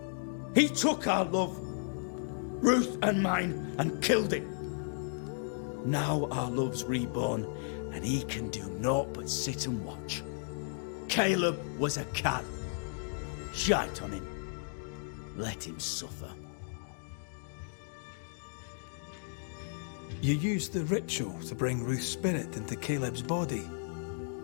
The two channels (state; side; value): silent; right; digital silence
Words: He took our love, Ruth and mine, and killed it. Now our love's reborn, and he can do naught but sit and watch. Caleb was a cad. Shite on him. Let him suffer. You used the ritual to bring Ruth's spirit into Caleb's body.